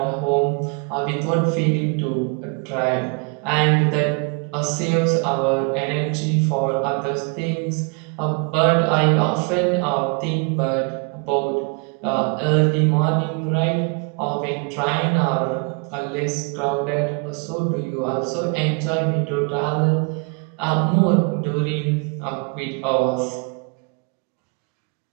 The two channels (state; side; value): quieter; left; 35.1 dB